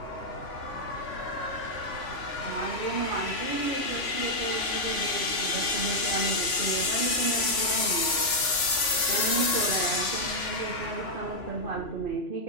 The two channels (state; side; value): late; right; 3.5 ms